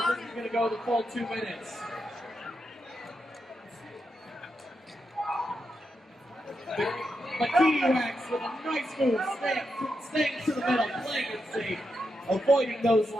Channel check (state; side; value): normal; both; correlation 0.85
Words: this is going to go the full 2 minutes. But Kiwiwax with a nice move, staying to the middle, playing it safe, avoiding those